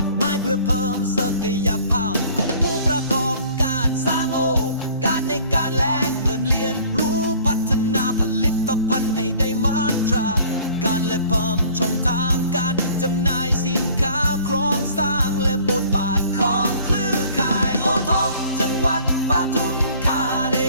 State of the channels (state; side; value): inverted; both; correlation -0.52